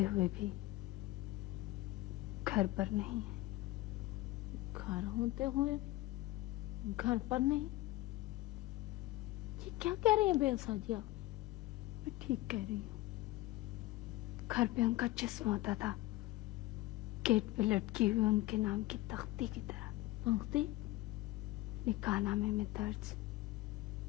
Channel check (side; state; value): right; quieter; 17.9 dB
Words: हुए भी घर पर नहीं है। घर होते हुए घर पर नहीं? ये क्या कह रही हैं बेलसा जी आप? मैं ठीक कह रही हूँ। घर पे उनका जिस्म होता था, गेट पे लटकी हुई उनके नाम की तख्ती की तरह। तख्ती? निकाहनामे में दर्ज